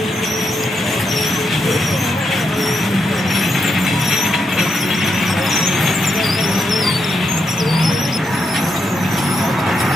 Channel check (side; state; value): both; normal; correlation 0.82